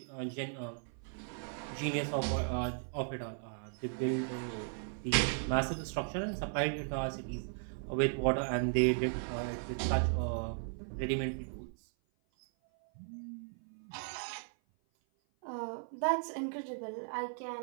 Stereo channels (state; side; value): silent; left; 53 dB below the other